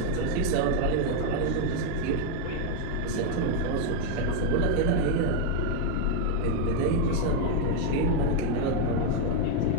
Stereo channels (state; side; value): different; both; correlation 0.00